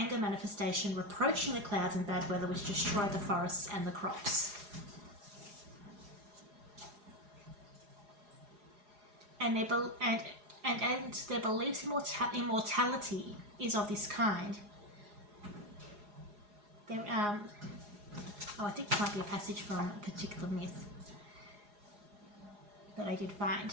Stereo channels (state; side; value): late; left; 4.8 ms